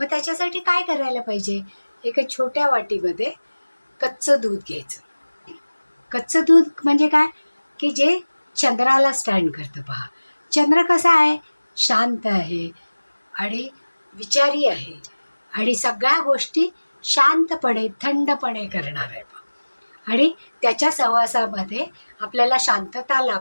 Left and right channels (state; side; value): inverted; both; correlation -1.00